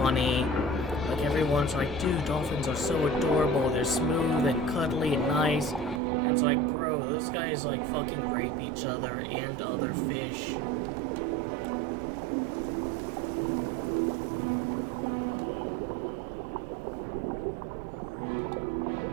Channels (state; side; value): drops out; left; at 6.0 s